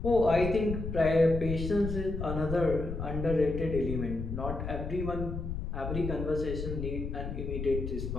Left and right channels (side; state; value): left; noise; rumble, 5 dB below the sound